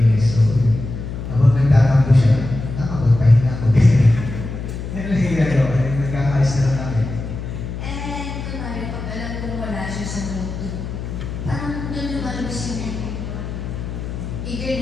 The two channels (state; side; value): noise; left; hum, 7 dB below the sound